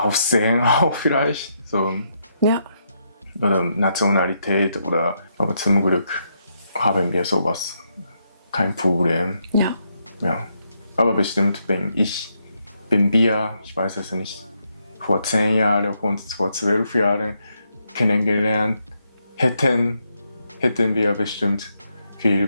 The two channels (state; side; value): inverted; both; correlation -0.79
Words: auch vielleicht. So, Ja, oder Nationalität aber zum Glück haben wir sowas. Kein Problem. ja, Ja. Aber bestimmt, wenn wir, ich weiß es nicht, vor 10 Jahren und vor 12 Jahren kennengelernt hätten wir bestimmt viele